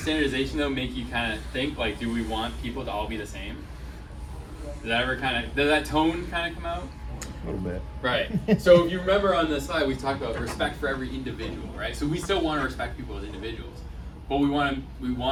standardization though make you kind of think, like, do we want people to all be the same? Does that tone kind of come out? A little bit. Right. So if you remember on the slide, we talked about respect for every individual, right? So we still want to respect people as individuals, but we want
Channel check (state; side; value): identical; both; correlation 1.00